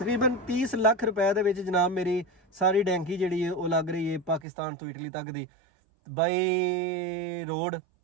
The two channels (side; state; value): left; drops out; at 4.5 s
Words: 30 ਲੱਖ ਰੁਪਏ ਦੇ ਵਿੱਚ ਜਨਾਬ ਮੇਰੀ ਸਾਰੀ ਡੈਂਕੀ ਜਿਹੜੀ ਹੈ ਉਹ ਲੱਗ ਰਹੀ ਹੈ ਪਾਕਿਸਤਾਨ ਤੋਂ ਇਟਲੀ ਤੱਕ ਦੀ ਬਾਈ ਰੋਡ